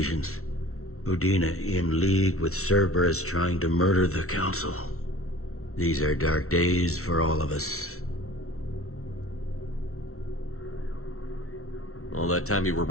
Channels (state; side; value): late; right; 0.63 ms